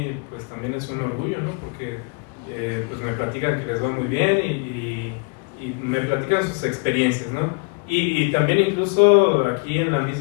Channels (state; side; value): quieter; right; 32.0 dB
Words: pues también es un orgullo, ¿no? Porque pues me platican que les va muy bien y me platican sus experiencias, ¿no? Y también incluso aquí en la